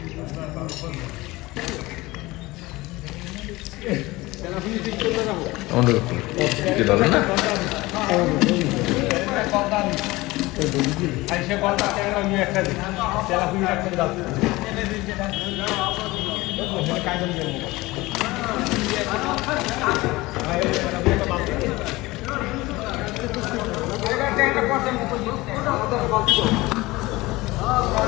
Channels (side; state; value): right; quieter; 20.5 dB